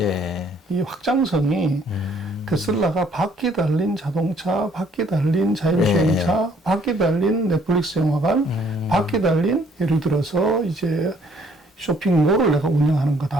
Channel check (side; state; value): both; normal; correlation 0.63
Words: 이 확장성이 테슬라가 바퀴 달린 자동차, 바퀴 달린 자율주행차, 바퀴 달린 넷플릭스 영화관, 바퀴 달린 예를 들어서 이제 쇼핑몰을 내가 운영하는